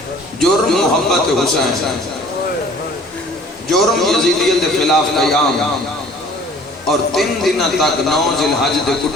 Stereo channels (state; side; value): normal; both; correlation 0.51